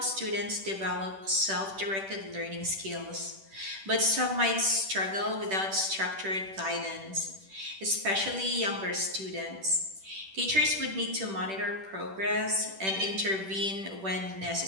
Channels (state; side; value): late; left; 10 ms